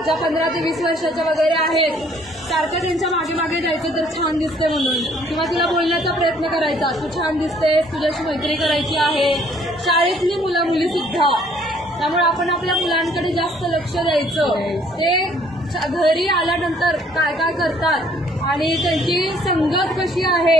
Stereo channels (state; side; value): normal; both; correlation 0.61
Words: ज्या 15 ते 20 वर्षाच्या वगैरे आहेत, सारखं त्यांच्या मागे मागे जायचं तर छान दिसते म्हणून, किंवा तिला बोलण्याचा प्रयत्न करायचा, तू छान दिसतेस, तुझ्याशी मैत्री करायची आहे. शाळेतली मुलं मुली सुद्धा. त्यामुळे आपण आपल्या मुलांकडे जास्त लक्ष द्यायचं. ते घरी आल्यानंतर काय काय करतात आणि त्यांची संगत कशी